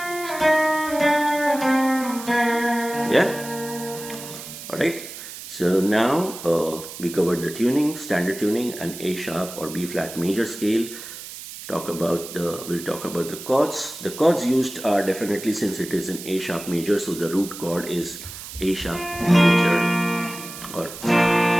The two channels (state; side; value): noise; right; hiss, 12 dB below the sound